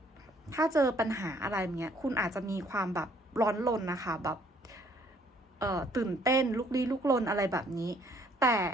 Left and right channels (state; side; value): normal; both; correlation 0.63